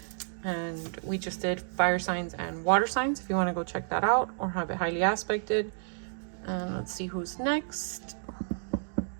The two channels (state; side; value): silent; left; digital silence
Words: And we just did fire signs and water signs if you want to go check that out or have it highly aspected. And let's see who's next.